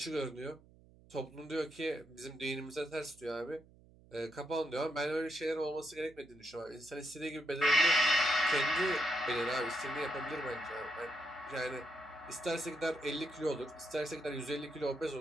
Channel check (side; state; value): right; noise; hum, 25 dB below the sound